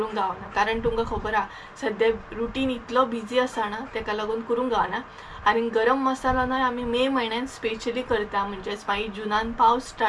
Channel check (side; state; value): both; identical; correlation 1.00